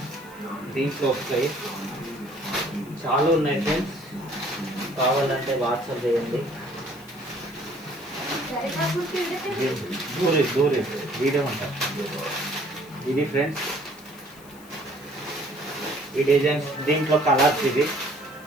దీంట్లో వస్తాయి. చాలా ఉన్నాయి ఫ్రెండ్స్, కావాలంటే వాట్సాప్ చేయండి. దూరి వీడియో ఉంటారు. ఇది ఫ్రెండ్స్, ఈ డిజైన్స్, దీంట్లో కలర్స్.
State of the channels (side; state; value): left; noise; hiss, 23 dB below the sound